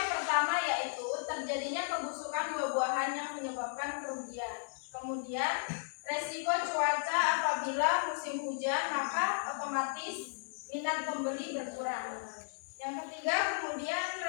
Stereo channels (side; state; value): right; silent; digital silence